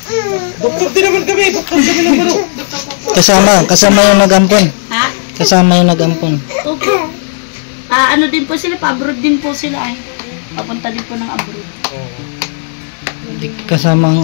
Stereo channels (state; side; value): silent; right; 65 dB below the other